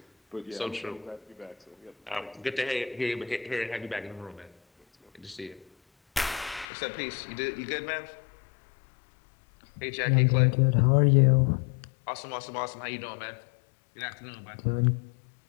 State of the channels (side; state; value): right; drops out; at 6.7 s